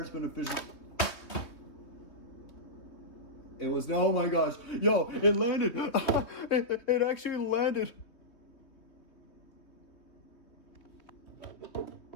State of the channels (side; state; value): right; late; 3.2 ms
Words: is beneficial. It was no, oh my gosh, yo, it landed. It actually landed.